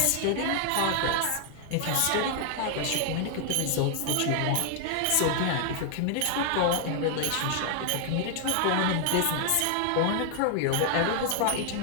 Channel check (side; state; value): both; different; correlation 0.00